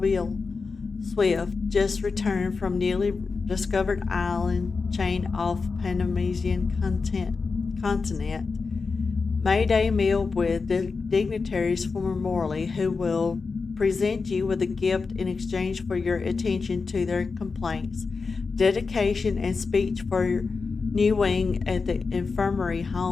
Swift, just returned from newly discovered island chain off Panamasian continent. May Day meal with dignitaries from Morley, who will present you with a gift in exchange for your attention to their complaints. Dedication and speech for your new wing at the infirmary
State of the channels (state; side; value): quieter; right; 4.6 dB